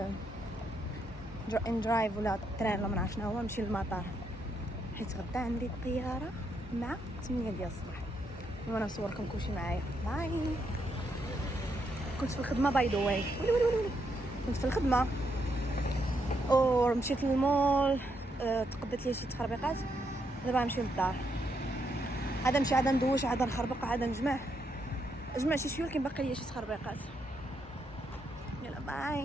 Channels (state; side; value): normal; both; correlation 0.78